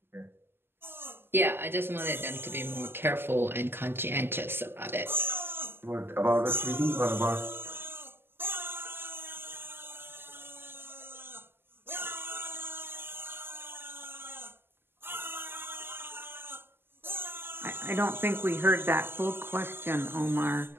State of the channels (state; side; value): late; left; 0.11 ms